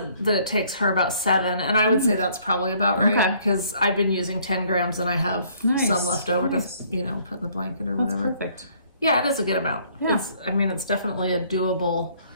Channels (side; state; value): both; inverted; correlation -0.61